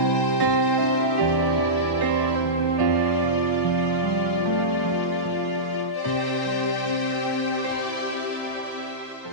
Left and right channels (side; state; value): right; late; 1.1 ms